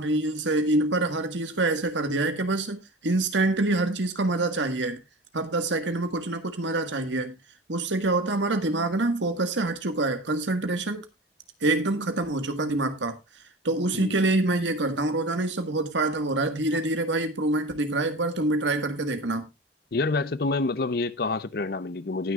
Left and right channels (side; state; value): both; normal; correlation 0.33